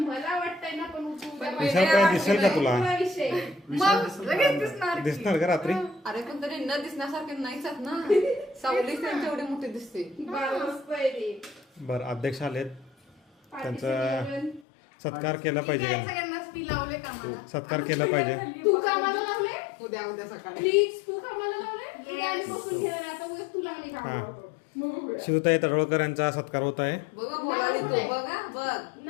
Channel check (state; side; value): drops out; right; at 14.6 s